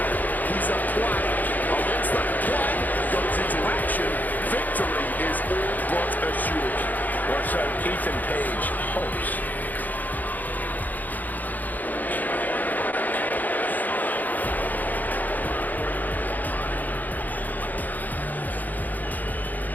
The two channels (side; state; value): right; late; 0.083 ms